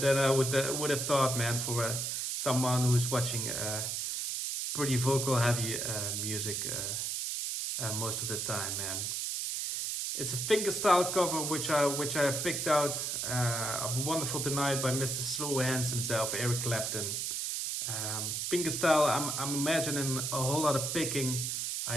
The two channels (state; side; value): noise; right; hiss, 1 dB below the sound